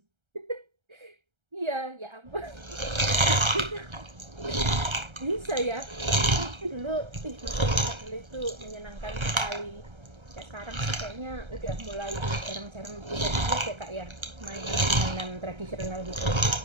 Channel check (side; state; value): left; late; 1.3 ms